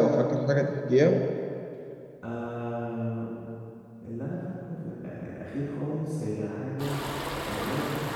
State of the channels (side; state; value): both; identical; correlation 1.00